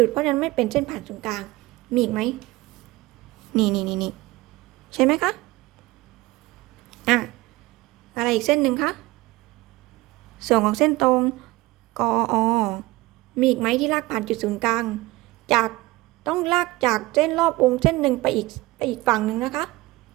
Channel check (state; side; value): quieter; left; 20.1 dB